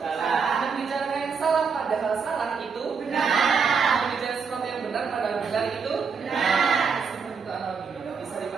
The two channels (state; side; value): quieter; left; 5.6 dB